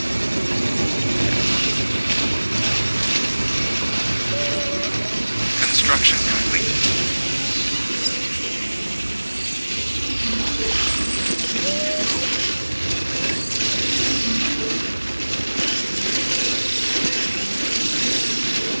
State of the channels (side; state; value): both; inverted; correlation -1.00